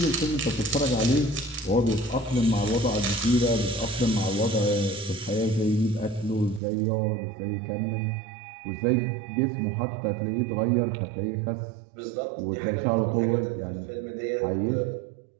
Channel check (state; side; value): drops out; left; at 6.6 s